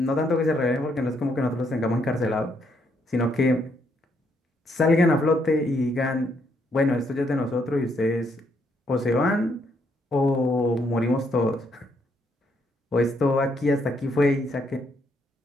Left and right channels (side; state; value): both; normal; correlation 0.73